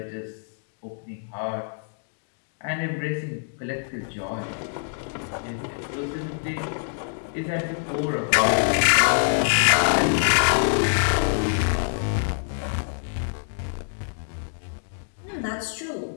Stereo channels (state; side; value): silent; right; digital silence